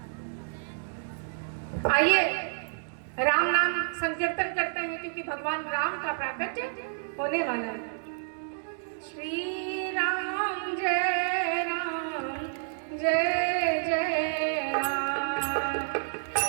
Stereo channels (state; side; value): silent; left; digital silence